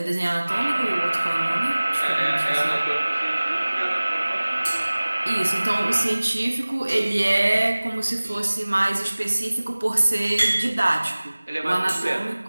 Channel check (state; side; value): inverted; both; correlation -1.00